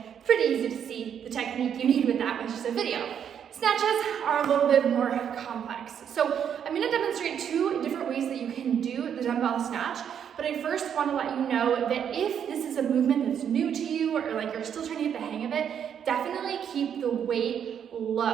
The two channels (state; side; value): quieter; left; 8.5 dB